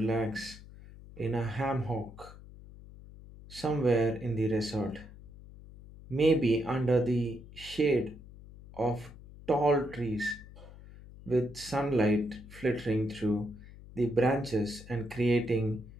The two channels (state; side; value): noise; left; hum, 18 dB below the sound